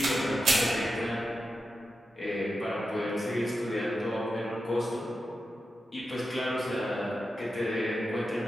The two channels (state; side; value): normal; both; correlation 0.90